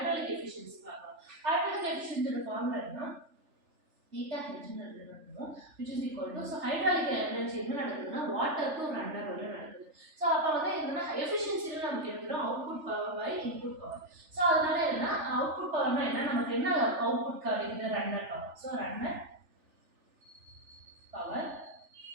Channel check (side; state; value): left; late; 3.4 ms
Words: எஃபிஷியன்சி பார்க்கலாம். ஹைட்ராலிக் எஃபிஷியன்சியோட ஃபார்முலா என்ன theta h நடக்குதுன்னு which is equal to so hydraulic energy என்ன நடக்குதுன்னா water to runner வரை நடக்குது. சோ அப்ப வந்து என்னன்னா எஃபிஷியன்சில நமக்கு எடுத்துறோம் output power by input power. So அதனால என்ன அவுட்புட் பவர்னா என்ன நமக்கு என்ன அவுட்புட் கிடைக்குது runner power. So runner power